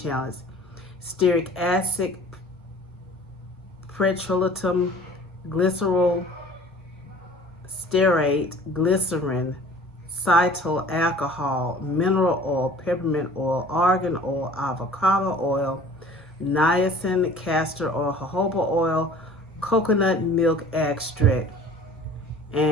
Stearic acid, petrolatum, glycerol, stearate, glycerin, cetyl alcohol, mineral oil, peppermint oil, argan oil, avocado oil, niacin, castor oil, jojoba oil, coconut milk extract,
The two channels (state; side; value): normal; both; correlation 0.47